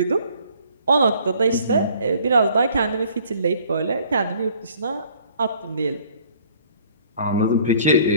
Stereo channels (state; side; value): inverted; both; correlation -0.56